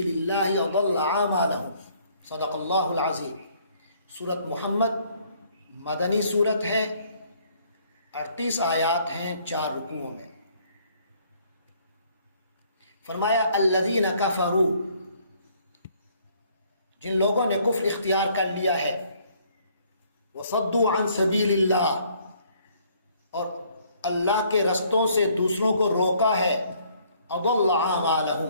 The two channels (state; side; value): inverted; both; correlation -0.63